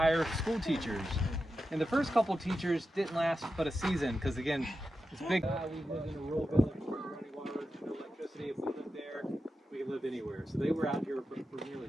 school teachers. And the first couple teachers didn't last but a season because, again, it's big. We live in a rural village with running water, no electricity. If we lived there, we could live anywhere. So they were out here for nearly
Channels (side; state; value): both; normal; correlation 0.90